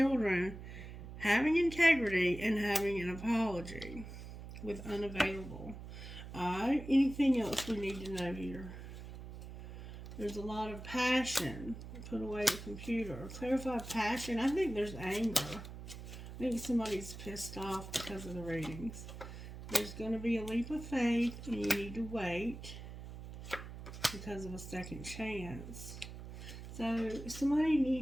having integrity and having an apology with unavailable. Alright, anything else we need to know here? There's a lot of passion. Put away the computer. Clarify passion. I think there's anger. I think somebody's pissed off because of the readings. There's going to be a leap of faith, and you need to wait because of a second chance. So somebody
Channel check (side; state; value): right; noise; hum, 11 dB below the sound